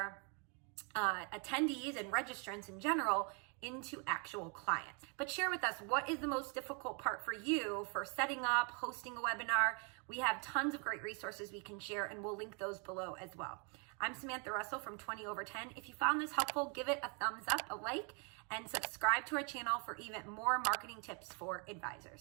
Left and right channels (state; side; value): quieter; left; 36.1 dB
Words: attendees and registrants in general into actual clients. But share with us, what is the most difficult part for you for setting up, hosting a webinar? We have tons of great resources we can share, and we'll link those below as well. I'm Samantha Russell from 20 Over 10. If you found this helpful, give it a thumbs up, a like, and subscribe to our channel for even more marketing tips for